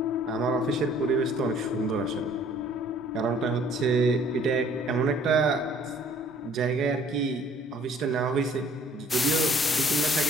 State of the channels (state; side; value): normal; both; correlation 0.57